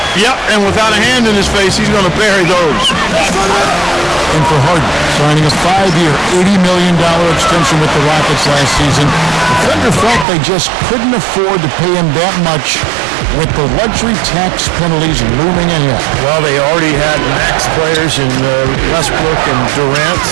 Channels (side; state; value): left; drops out; at 10.2 s